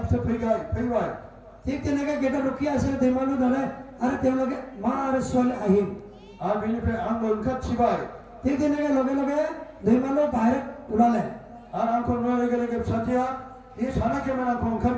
बिसोर फैबाय ঠিক তেনেকৈ গেটত ৰখি আছিল দেমালু দাদাই আৰু তেওঁলোকে মা আৰু ছোৱালী আহিল आरो बेनिफ्राय आंबो ओंखारथिबाय ঠিক তেনেকৈ লগে লগে দেমালু বাহিৰত ওলালে आरो आंखौ नुनाय लोगो लोगो फिसाजोआ बे सानाखैमोन आंखौ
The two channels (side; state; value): both; identical; correlation 1.00